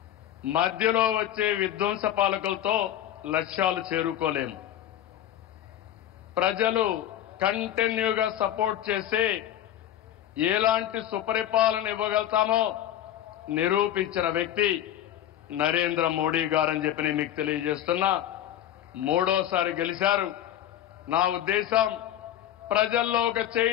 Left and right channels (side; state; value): right; quieter; 11.8 dB